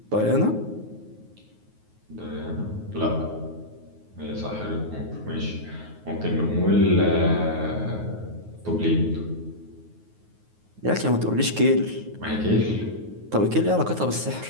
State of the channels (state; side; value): late; left; 9.5 ms